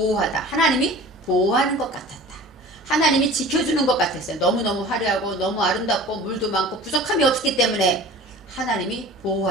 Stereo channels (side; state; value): both; normal; correlation 0.42